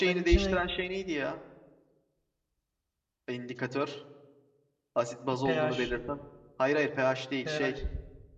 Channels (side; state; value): both; identical; correlation 1.00